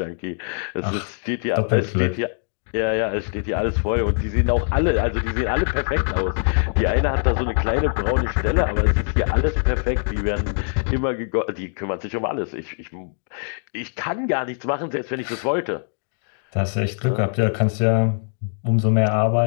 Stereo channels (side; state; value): right; silent; digital silence